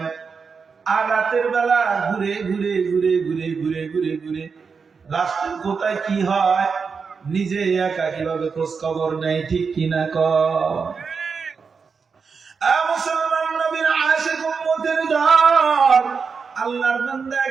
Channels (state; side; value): quieter; left; 5.4 dB